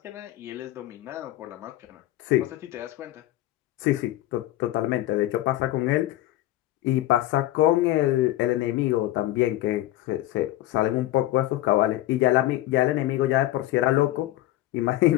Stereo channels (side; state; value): right; quieter; 15.3 dB